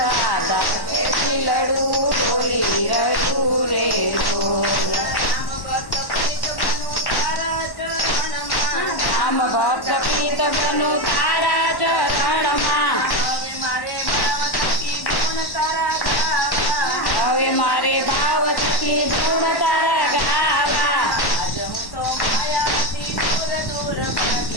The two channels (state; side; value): late; right; 1.1 ms